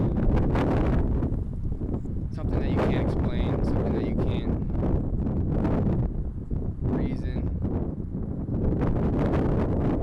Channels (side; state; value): both; identical; correlation 1.00